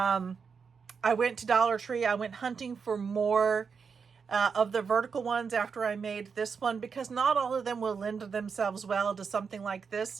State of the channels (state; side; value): quieter; left; 5.8 dB